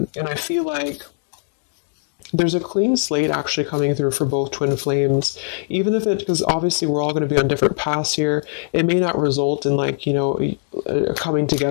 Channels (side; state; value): right; silent; digital silence